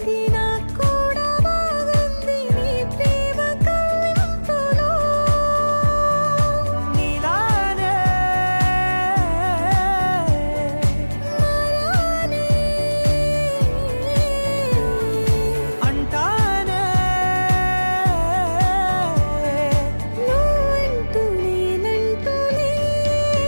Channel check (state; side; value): inverted; both; correlation -1.00